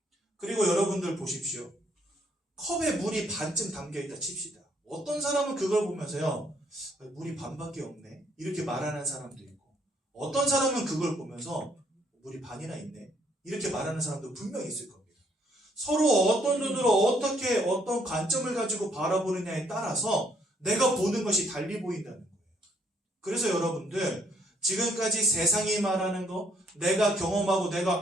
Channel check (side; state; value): both; normal; correlation 0.68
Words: 그리고 여러분들 보십시오. 컵에 물이 반쯤 담겨있다 칩시다. 어떤 사람은 그걸 보면서요 물이 반밖에 없네 이렇게 말하는 사람도 있고 어떤 사람은 그걸 보면서 물이 반이나 있네 이렇게 말하는 사람도 분명히 있을 겁니다. 서로 어떤 눈으로 어떻게 어떤 관점을 가지고 바라보느냐에 따라서 내가 보는 것이 달리 보인다는 거예요. 그래서 여러분들 지금까지 세상이 말하는 거 내가 경험하고